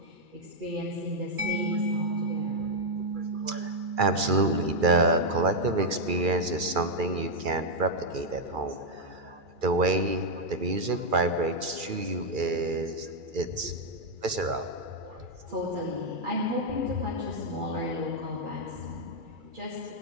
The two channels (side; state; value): left; late; 2.3 ms